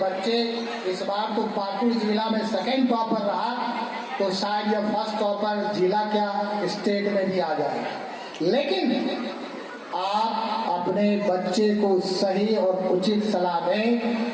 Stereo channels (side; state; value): both; identical; correlation 1.00